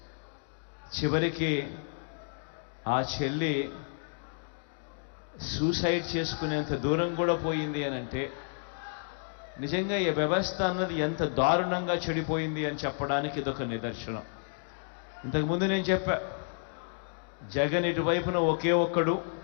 చివరికి ఆ చెల్లి సూసైడ్ చేసుకునేంత దూరం కూడా పోయింది అని అంటే నిజంగా ఈ వ్యవస్థ అన్నది ఎంత దారుణంగా చెడిపోయింది అని చెప్పడానికి ఇదొక నిదర్శనం. ఇంతకుముందు నేను చెప్పా, జగన్ ఇటువైపున ఒకే ఒక్కడు,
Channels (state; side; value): silent; right; digital silence